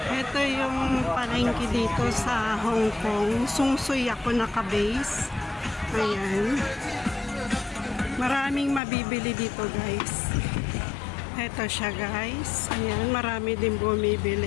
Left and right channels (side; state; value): right; drops out; at 8.8 s